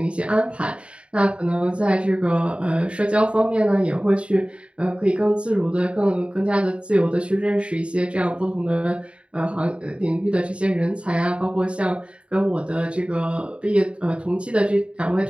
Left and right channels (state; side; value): late; left; 0.059 ms